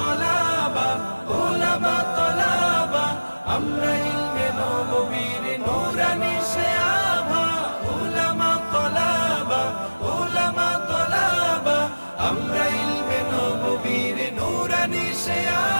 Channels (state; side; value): inverted; both; correlation -1.00